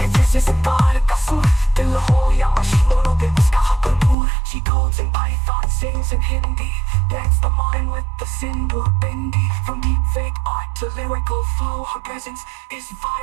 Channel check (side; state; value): left; drops out; at 4.2 s